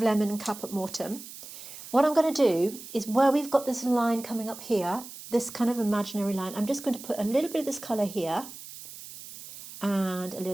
lemon and Caput Mortem. What I'm going to do is where we've got this line coming up here, this kind of imaginary line, I'm just going to put a little bit of this colour here and a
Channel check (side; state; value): right; noise; hiss, 14 dB below the sound